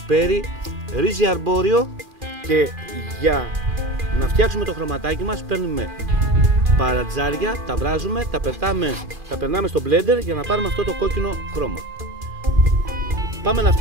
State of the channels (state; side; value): late; left; 2.4 ms